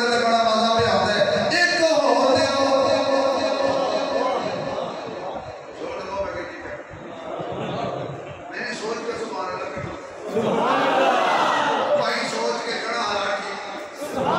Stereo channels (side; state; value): both; identical; correlation 1.00